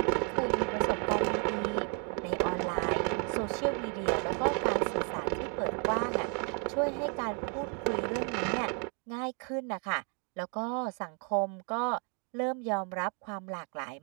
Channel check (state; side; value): quieter; left; 38.7 dB